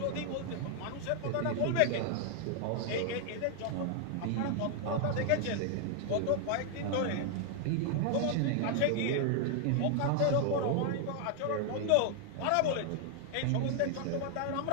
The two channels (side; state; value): both; different; correlation 0.00